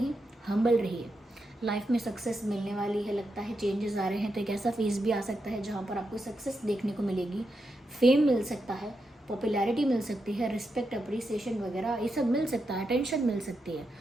हम्बल रहिए। लाइफ में सक्सेस मिलने वाली है, लगता है चेंजेस आ रहे हैं, तो एक ऐसा फेज़ भी आ सकता है जहाँ पर आपको सक्सेस देखने को मिलेगी, फेम मिल सकता है, पॉपुलैरिटी मिल सकती है, रिस्पेक्ट, अप्रिसिएशन वगैरह ये सब मिल सकता है, अटेंशन मिल सकती है।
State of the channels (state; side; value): normal; both; correlation 0.85